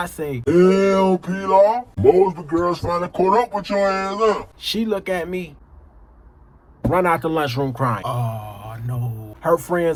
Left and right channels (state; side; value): identical; both; correlation 1.00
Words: say, Hell, Pilar. Mosby girls finally caught up with your ass, huh? She look at me, run out the lunchroom crying. Oh, no. Her